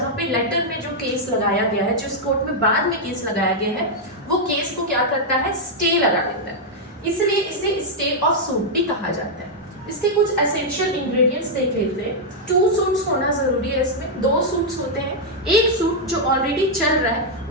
पे लेटर में जो केस लगाया गया है, जिस कोर्ट में बाद में केस लगाया गया है, वो केस को क्या करता है, स्टे लगा देता है। इसलिए इसे स्टे ऑफ सूट भी कहा जाता है। इसके कुछ एसेंशियल इंग्रेडिएंट्स देख लेते हैं। 2 सूट्स होना जरूरी है, इसमें 2 सूट्स होते हैं। एक सूट जो ऑलरेडी चल रहा है,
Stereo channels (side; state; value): both; normal; correlation -0.03